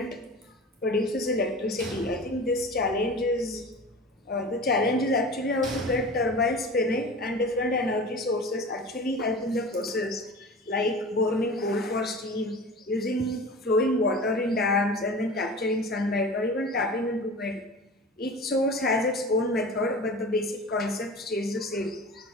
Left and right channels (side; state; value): both; normal; correlation 0.36